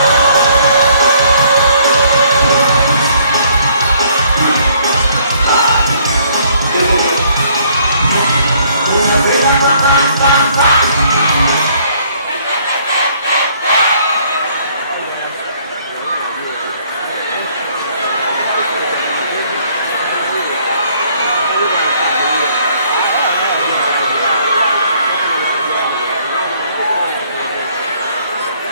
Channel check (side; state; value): both; inverted; correlation -0.64